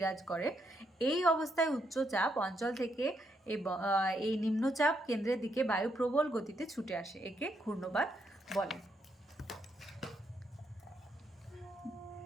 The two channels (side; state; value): both; normal; correlation 0.77